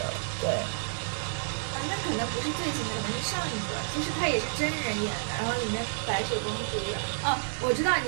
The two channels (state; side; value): silent; left; digital silence